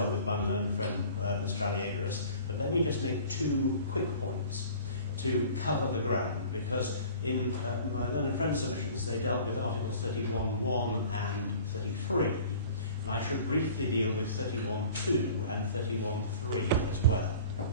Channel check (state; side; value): inverted; both; correlation -0.45